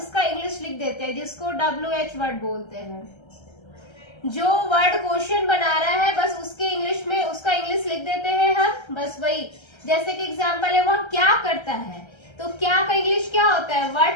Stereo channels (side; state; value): right; late; 1.3 ms